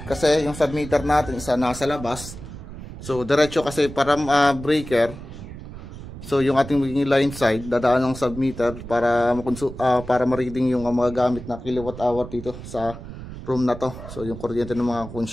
Kasi yung submeter natin isa nasa labas. So, diretso kasi para breaker. So, yung ating magiging line side, dadaan ng submeter para ma-reading yung mga gamit na kilowatt hour dito sa room na to. So, yung kuryente ng mga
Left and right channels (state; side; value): noise; right; rumble, 12 dB below the sound